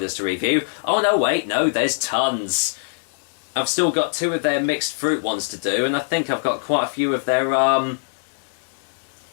to review. Oh no, wait, no, there's tons. I've still got two of their mixed fruit ones to do, and I think I've got quite a few of their,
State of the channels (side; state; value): right; silent; digital silence